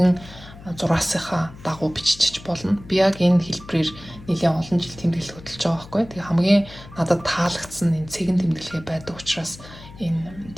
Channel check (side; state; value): left; noise; hum, 18 dB below the sound